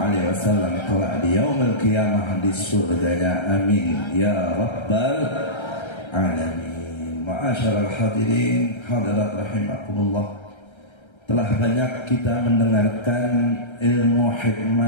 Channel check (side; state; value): right; late; 1.3 ms